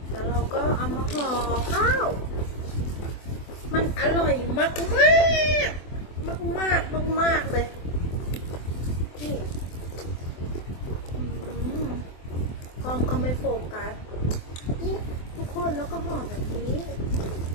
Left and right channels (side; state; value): right; late; 24 ms